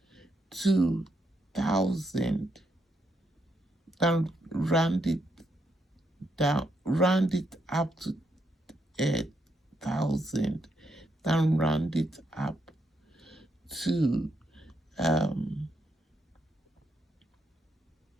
to 1000 than round it up to 1000, than round it up to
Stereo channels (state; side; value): normal; both; correlation 0.79